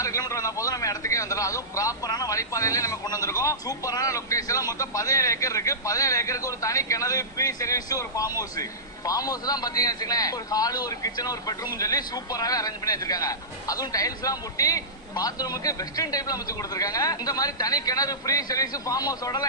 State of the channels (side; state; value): both; normal; correlation -0.19